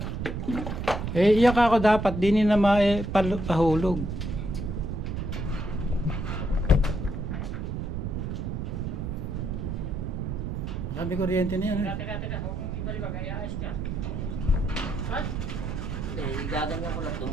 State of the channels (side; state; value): right; noise; rumble, 3 dB below the sound